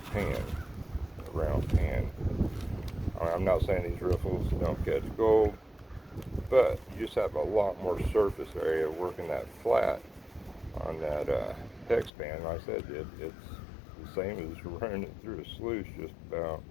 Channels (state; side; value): drops out; right; at 12.1 s